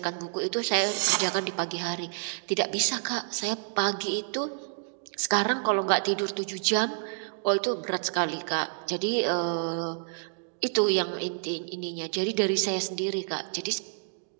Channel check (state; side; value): silent; left; digital silence